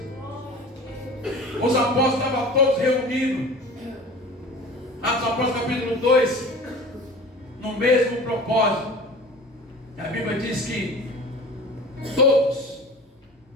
Os apóstolos estavam todos reunidos, Atos dos Apóstolos capítulo 2, no mesmo propósito. A Bíblia diz que todos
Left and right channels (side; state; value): both; normal; correlation 0.39